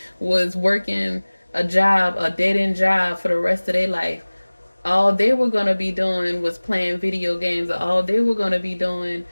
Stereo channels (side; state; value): both; inverted; correlation -1.00